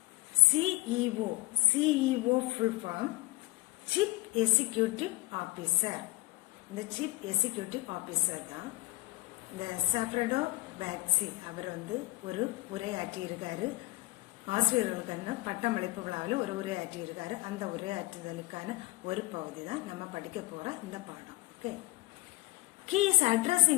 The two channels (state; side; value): quieter; right; 20.6 dB